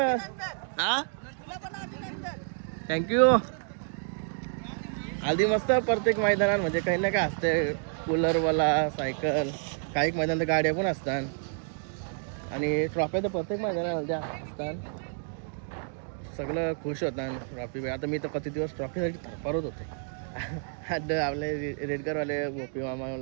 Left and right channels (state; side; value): silent; left; 58 dB below the other